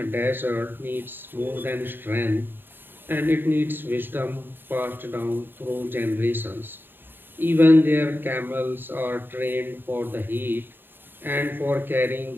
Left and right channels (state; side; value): late; left; 0.096 ms